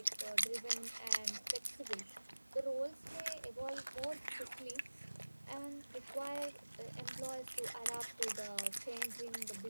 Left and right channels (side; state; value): both; inverted; correlation -1.00